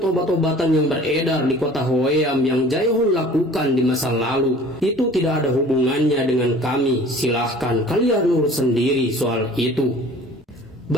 obat-obatan yang beredar di kota Hwaeam yang Jae-hon lakukan di masa lalu. Itu tidak ada hubungannya dengan kami. Silahkan kalian urus sendiri soal itu."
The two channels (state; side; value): normal; both; correlation 0.47